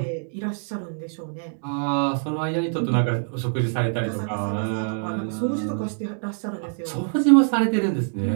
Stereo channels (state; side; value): silent; left; digital silence